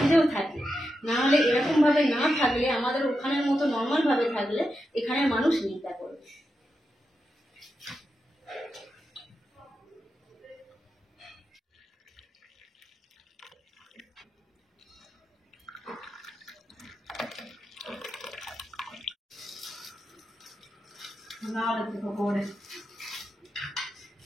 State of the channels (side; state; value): both; normal; correlation 0.88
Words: থাকে। না হলে এরকম ভাবে না থাকলে, আমাদের ওখানের মতো নর্মাল ভাবে থাকলে এখানে মানুষ নিন্দা করবে। पकौड़े